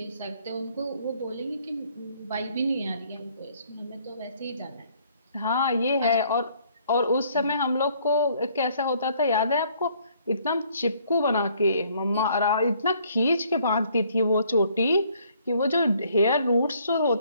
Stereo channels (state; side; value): inverted; both; correlation -0.64